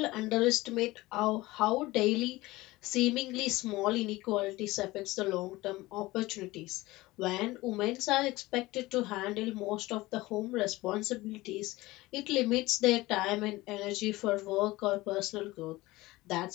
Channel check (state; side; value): quieter; right; 19.5 dB